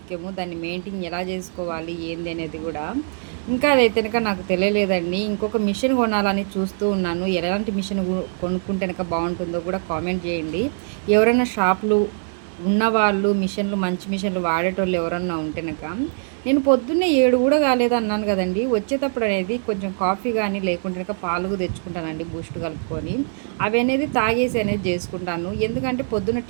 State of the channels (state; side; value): silent; left; 64 dB below the other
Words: దాన్ని మెయింటైన్ ఎలా చేసుకోవాలి ఏంది అనేది కూడా ఇంకా అదైతే కనుక నాకు తెలియలేదండి. ఇంకొక మిషన్ కొనాలని చూస్తూ ఉన్నాను. ఎలాంటి మిషన్ కొనుక్కుంటే కనుక బాగుంటుందో కూడా కామెంట్ చేయండి. ఎవరైనా షాపులు ఉన్నవాళ్ళు మిషన్లు, మంచి మిషన్లు వాడేటోళ్ళు ఎవరన్నా ఉంటేనక. నేను పొద్దున్నే 7 కూడా కాలేదు అన్నాను కదండి. వచ్చేటప్పుడు అనేది కొంచెం కాఫీ కానీ లేకుంటే పాలు తెచ్చుకుంటానండి బూస్ట్ కలుపుకొని. అవి అనేది తాగేసి అనేది చేసుకుంటాను. ఎందుకంటే పొద్దున్న